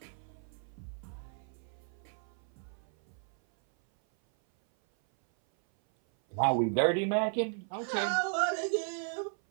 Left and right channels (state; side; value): silent; left; 55 dB below the other